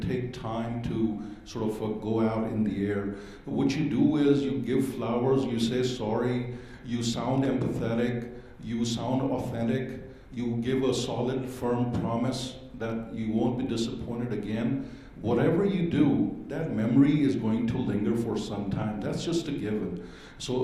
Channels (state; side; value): identical; both; correlation 1.00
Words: take time to sort of go out in the air. What you do is you give flowers, you say sorry, you sound empathetic, you sound authentic, you give a solid, firm promise that you won't be disappointed again. Whatever you do, that memory is going to linger for some time. That's just a given.